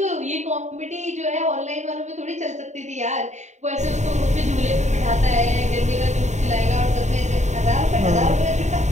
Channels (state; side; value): late; left; 0.34 ms